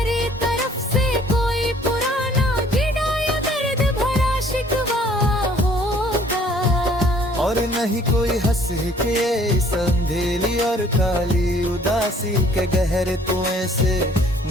तरफ से कोई पुराना गिरा या दर्द भरा शिकवा होगा, और नहीं कोई हंस के इस अंधेरी और काली उदासी के गहरे कुएं से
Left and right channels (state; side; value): normal; both; correlation 0.58